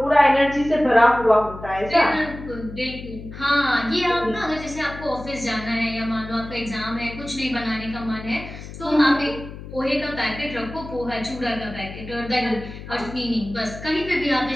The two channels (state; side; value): noise; left; hum, 12 dB below the sound